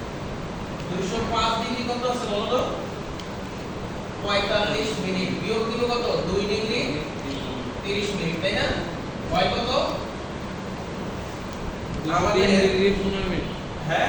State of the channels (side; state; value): both; identical; correlation 1.00